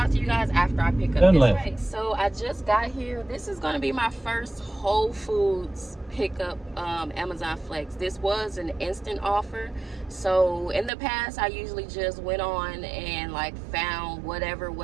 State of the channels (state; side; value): drops out; left; at 10.9 s